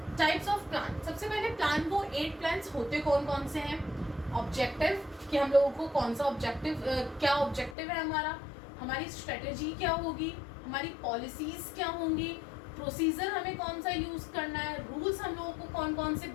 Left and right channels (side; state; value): right; drops out; at 7.8 s